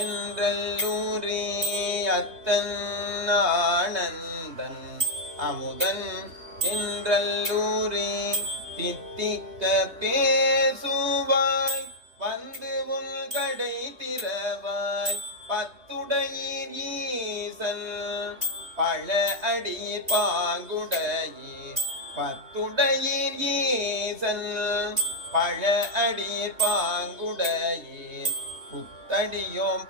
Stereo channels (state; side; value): late; left; 3.3 ms